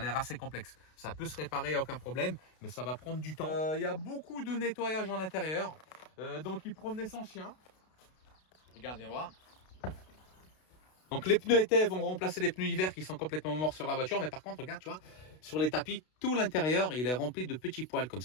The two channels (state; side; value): late; right; 32 ms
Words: assez complexe. Ça peut se réparer, il n'y a aucun problème, mais ça va prendre du temps. Il y a beaucoup de nettoyage en intérieur, donc il promenait son chien. Regarde, viens voir. Donc les pneus été vont remplacer les pneus hiver qui sont complètement morts sur la voiture. Mais par contre, regarde, tu vois, sur les tapis, tout l'intérieur, il est rempli de petits poils comme